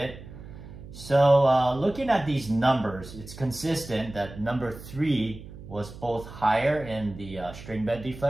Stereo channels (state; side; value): noise; right; hum, 15 dB below the sound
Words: So looking at these numbers, it's consistent that number 3 was both higher in the string bed